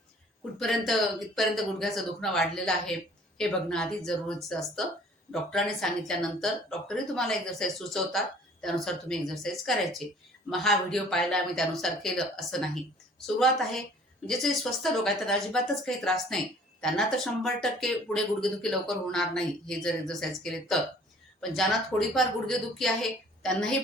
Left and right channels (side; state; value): both; normal; correlation 0.53